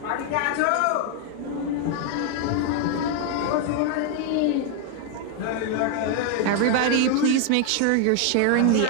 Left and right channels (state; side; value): different; both; correlation 0.00